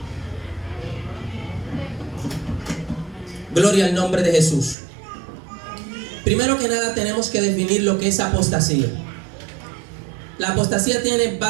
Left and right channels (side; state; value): left; drops out; at 4.8 s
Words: Gloria al nombre de Jesús. Primero que nada tenemos que definir lo que es apostasía. La apostasía tiene